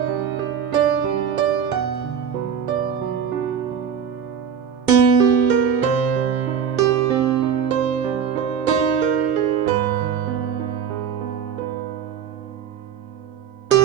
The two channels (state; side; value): quieter; left; 7.7 dB